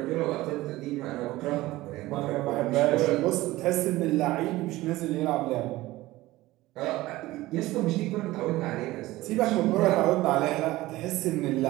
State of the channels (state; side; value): quieter; left; 17.9 dB